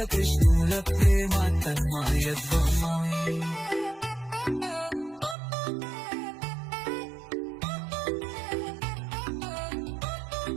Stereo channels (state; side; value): drops out; left; at 5.4 s